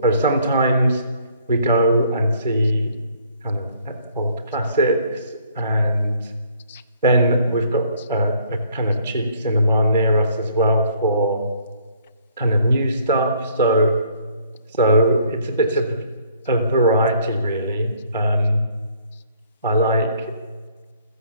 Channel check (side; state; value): both; inverted; correlation -0.62